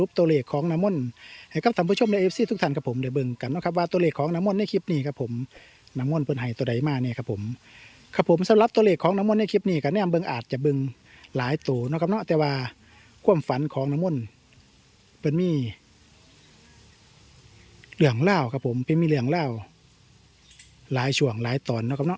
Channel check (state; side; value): identical; both; correlation 1.00